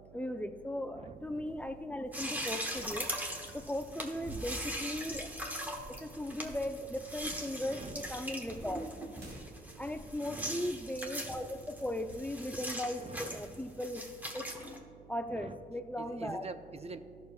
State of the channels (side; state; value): right; noise; hum, 17 dB below the sound